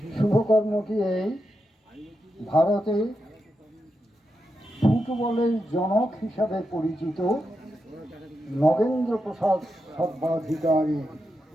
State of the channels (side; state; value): both; normal; correlation 0.87